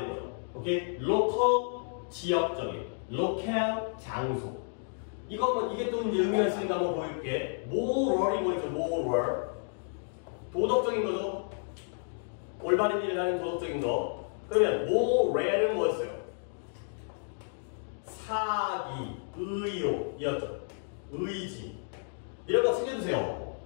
거죠. 오케이? local 지역적인, local 장소. 이게 또 이제 의미가 있으니까 한번 보여줄게. moral이 뭐였죠? moral. 도덕적인 거죠. 올바른 일을 하는 도덕적인 거. 그러면 moral은 뭐였어요? 사기, 의욕이었죠. 의지. 이런 거 챙겨주세요.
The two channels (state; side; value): silent; right; digital silence